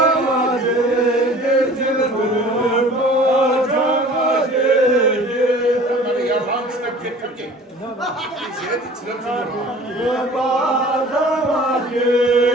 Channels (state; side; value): normal; both; correlation 0.46